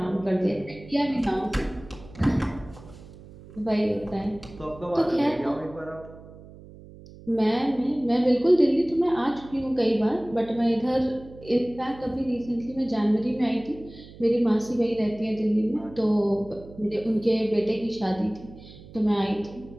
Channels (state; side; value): noise; right; hum, 19 dB below the sound